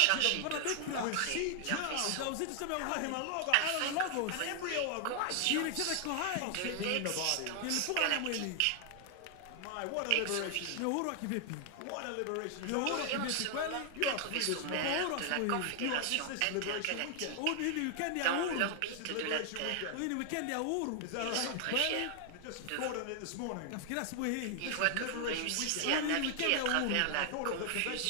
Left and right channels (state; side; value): different; both; correlation 0.00